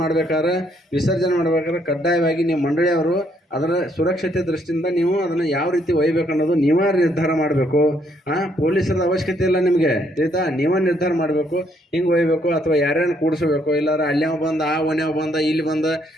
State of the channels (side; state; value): both; normal; correlation 0.70